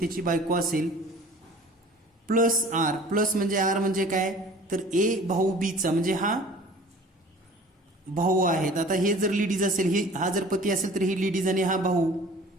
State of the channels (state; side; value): normal; both; correlation 0.46